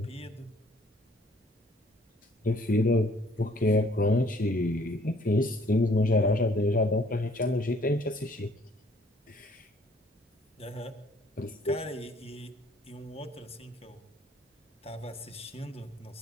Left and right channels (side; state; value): both; normal; correlation 0.60